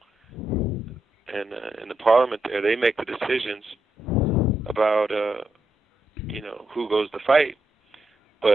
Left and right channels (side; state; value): both; normal; correlation 0.82